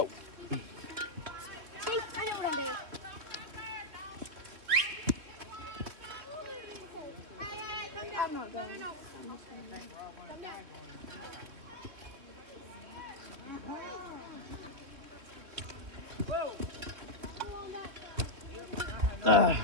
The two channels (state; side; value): late; left; 3.4 ms